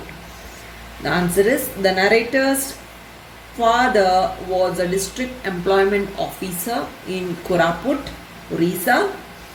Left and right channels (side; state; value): both; identical; correlation 1.00